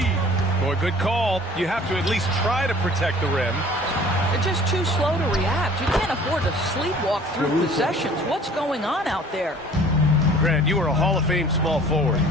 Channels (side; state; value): both; normal; correlation 0.50